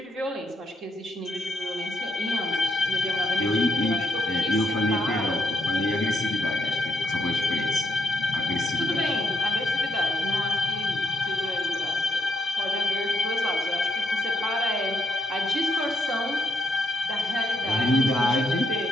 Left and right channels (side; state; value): both; normal; correlation 0.76